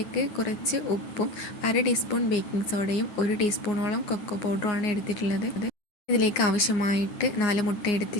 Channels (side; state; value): right; late; 9.6 ms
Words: കുറച്ച് ഉപ്പും 1/2 ടീസ്പൂൺ ബേക്കിംഗ് സോഡയും 1 ടീസ്പൂണോളം കൊക്കോ പൗഡറുമാണ് എടുത്തിട്ടുള്ളത്. ഇതിലേക്ക് ആവശ്യമായിട്ട് 4 മുട്ട